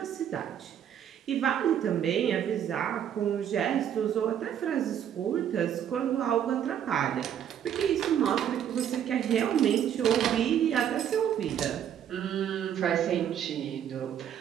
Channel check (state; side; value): quieter; left; 9.6 dB